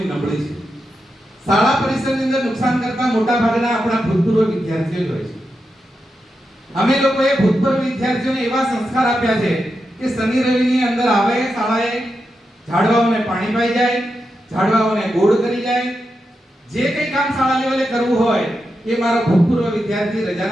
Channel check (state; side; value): normal; both; correlation 0.87